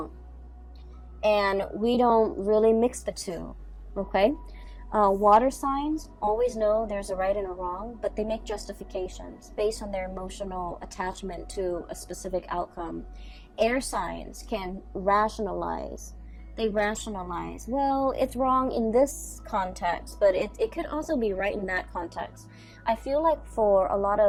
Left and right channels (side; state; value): both; identical; correlation 1.00